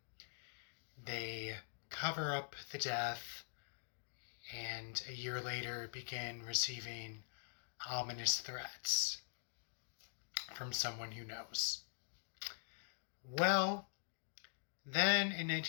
They cover up the death and a year later begin receiving ominous threats from someone who knows. Well, then in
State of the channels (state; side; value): silent; right; digital silence